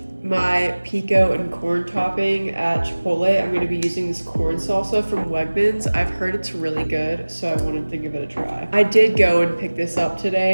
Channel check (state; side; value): inverted; both; correlation -1.00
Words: my pico and corn topping at Chipotle, I'm going to be using this corn salsa from Wegmans. I've heard it's really good, so I wanted to give it a try. I did go and pick this up